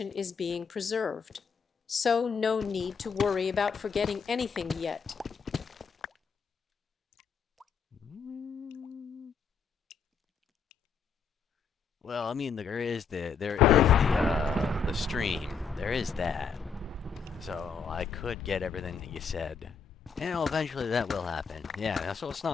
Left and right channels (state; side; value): quieter; right; 5.9 dB